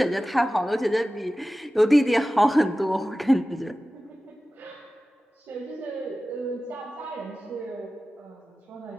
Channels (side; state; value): both; normal; correlation 0.96